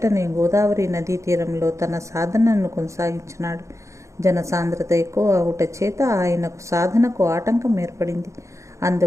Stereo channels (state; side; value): late; left; 0.15 ms